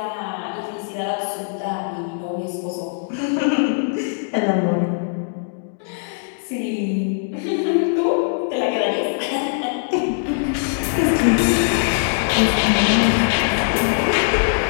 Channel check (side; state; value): right; silent; digital silence